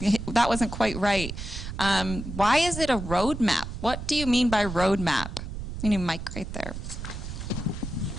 that wasn't quite right. Why is it a roadmap? What do you mean by roadmap? You need a mic right there.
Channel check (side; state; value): right; noise; rumble, 7 dB below the sound